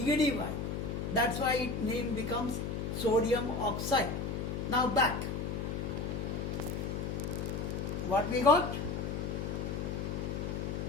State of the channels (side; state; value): left; noise; hum, 2 dB below the sound